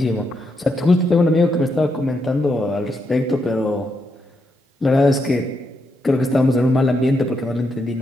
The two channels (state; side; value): normal; both; correlation 0.81